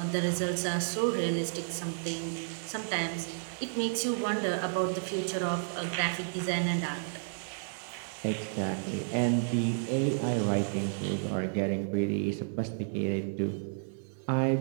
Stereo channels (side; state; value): left; silent; digital silence